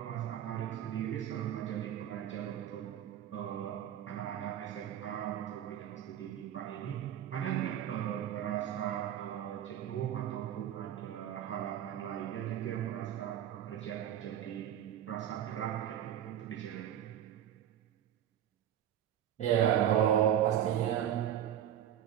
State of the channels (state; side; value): quieter; left; 10.6 dB